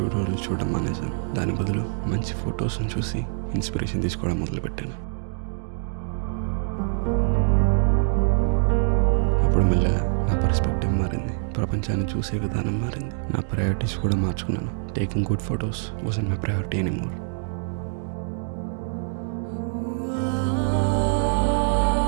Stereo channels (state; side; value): silent; left; digital silence